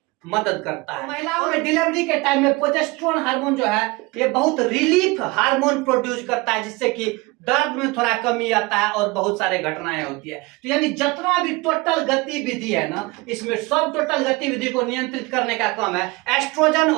मदद करता है। महिलाओं में डिलीवरी के टाइम में प्रोजेस्टेरोन हार्मोन जो है ये बहुत रिलीफ हार्मोन प्रोड्यूस करता है, जिससे कि दर्द में थोड़ा कमी आता है और बहुत सारे घटनाएं होती है। तो यानी जितना भी टोटल गतिविधि है ना, इसमें सब टोटल गतिविधि को नियंत्रित करने का काम है एस्ट्रोजन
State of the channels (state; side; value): quieter; left; 24.1 dB